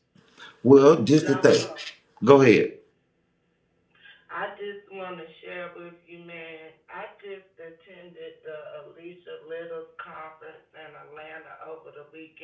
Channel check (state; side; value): identical; both; correlation 1.00